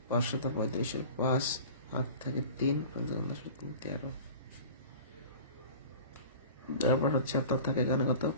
5 7 35, 5 8 থেকে 3 5 10 3 13, তারপর হচ্ছে আপনার থাকে এখানে কত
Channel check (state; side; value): inverted; both; correlation -0.39